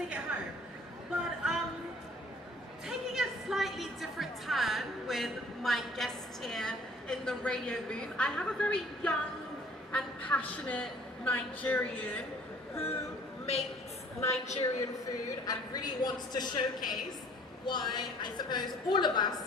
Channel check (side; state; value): both; normal; correlation 0.54